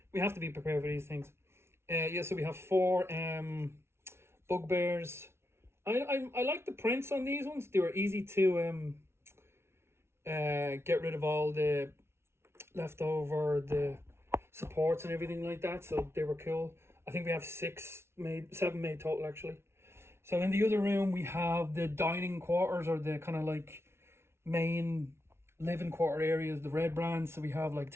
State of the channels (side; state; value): left; late; 0.12 ms